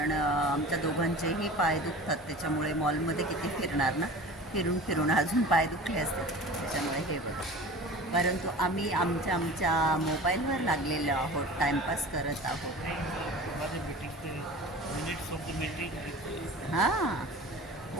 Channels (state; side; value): normal; both; correlation 0.37